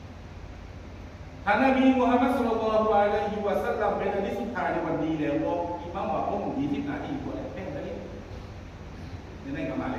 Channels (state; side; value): identical; both; correlation 1.00